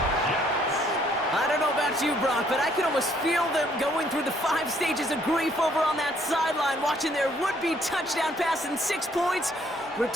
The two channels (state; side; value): normal; both; correlation 0.66